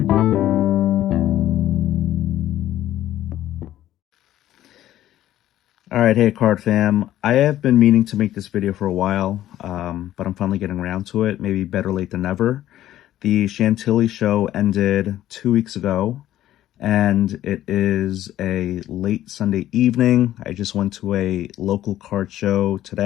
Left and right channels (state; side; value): quieter; right; 13.2 dB